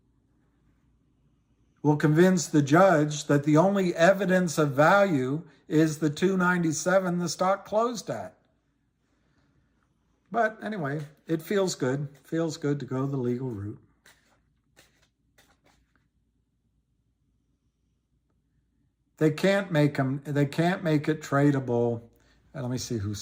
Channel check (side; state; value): both; identical; correlation 1.00